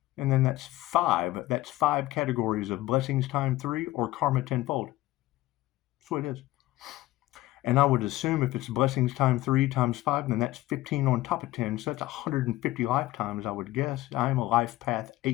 And then that's 5. That's 5 categories of blessings times 3 or karma 10-fold. That's what it is. And I would assume if it's blessings times 3 times 5, then that's 15 on top of 10. So that's 150 lifetimes, I would guess. I am a life path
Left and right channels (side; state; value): right; quieter; 16.8 dB